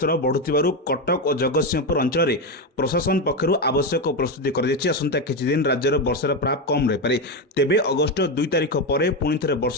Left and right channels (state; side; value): normal; both; correlation 0.11